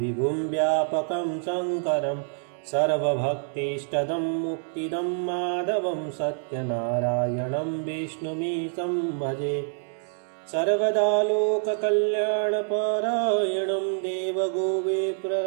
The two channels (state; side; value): silent; left; digital silence